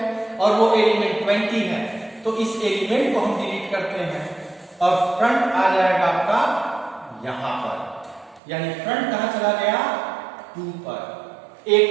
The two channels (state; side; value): drops out; left; at 8.4 s